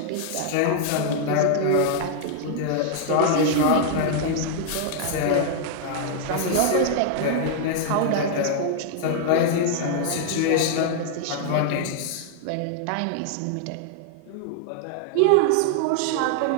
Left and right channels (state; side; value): different; both; correlation 0.00